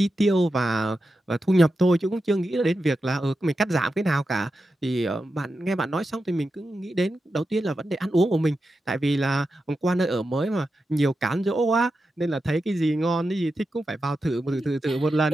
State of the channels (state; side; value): normal; both; correlation 0.90